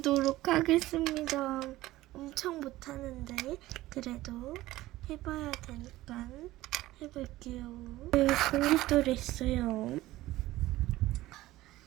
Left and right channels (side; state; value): left; quieter; 16.8 dB